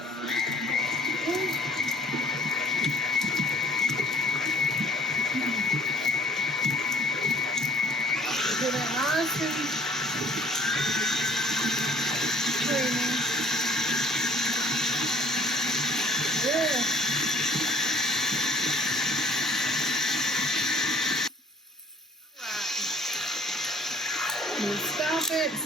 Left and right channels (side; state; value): both; normal; correlation 0.56